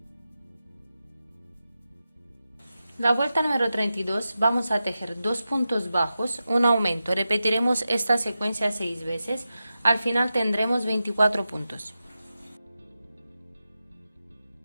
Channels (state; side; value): inverted; both; correlation -0.91